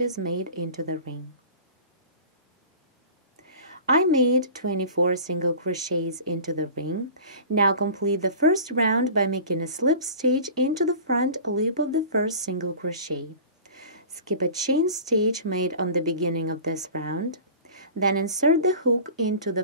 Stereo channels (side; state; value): both; inverted; correlation -0.39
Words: made into the ring. I made 24 single crochets into the ring. Now complete the first round by making a slip stitch into the front loop of the first single crochet. Skip a chain stitch made on the beginning of this round. Then insert the hook into